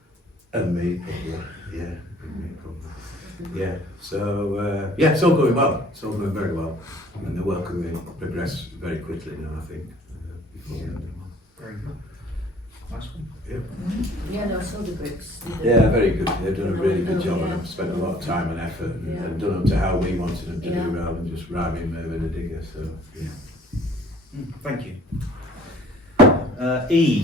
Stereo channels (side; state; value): both; normal; correlation 0.54